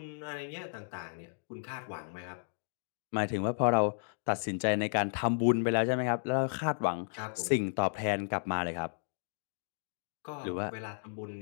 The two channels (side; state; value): right; silent; digital silence